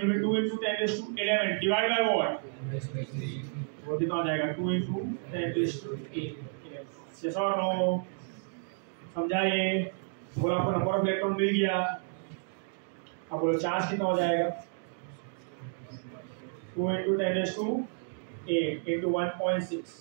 will be 2 into 10⁻11 divide by what, वो कितना हो जाएगा 2 into 10⁻8। यस और नो, समझा ये। बोला आपको नंबर ऑफ इलेक्ट्रॉन मिल गया, अब बोलो चार्ज कितना हो जाएगा 2 into 10⁻8 into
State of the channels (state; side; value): silent; left; 56 dB below the other